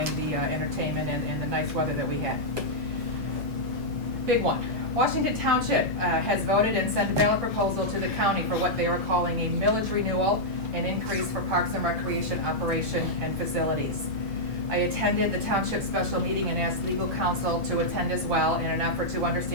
the entertainment and the nice weather that we had. Big one. Washington Township has voted and sent a ballot proposal to the county for what they are calling a millage renewal, an increase for Parks and Recreation operation and facilities. I attended the township special meeting and asked legal counsel to attend as well in an effort to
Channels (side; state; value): both; normal; correlation -0.07